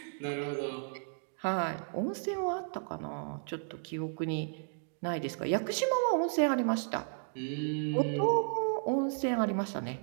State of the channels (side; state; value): left; silent; digital silence